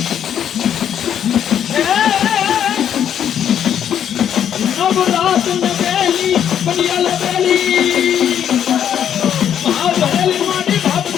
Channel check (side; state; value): right; quieter; 9.4 dB